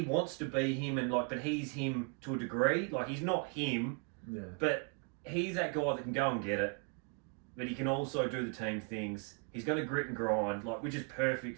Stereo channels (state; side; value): quieter; left; 37.0 dB